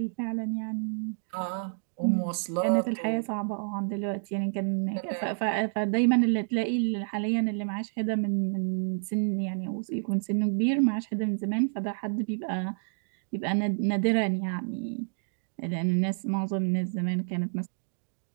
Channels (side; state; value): left; silent; digital silence